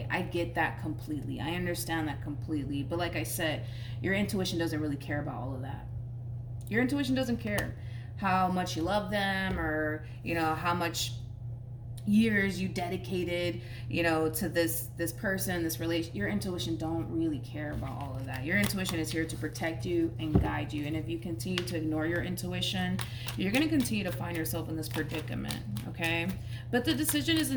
I get that completely. I understand that completely. But like I said, your intuition doesn't really care about all of that. Your intuition doesn't care how much you love them, or, you know, how much years you dedicated, you know, to this person, this relation. Your intuition don't really care about all of that. Your intuition is here to protect you and guide you. And if you continue to ignore your intuition, you're going to continue to find yourself in this predicament, okay? But the decision is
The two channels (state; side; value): identical; both; correlation 1.00